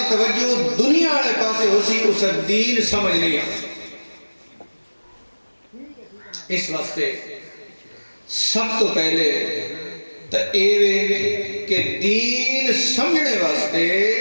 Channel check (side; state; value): both; inverted; correlation -1.00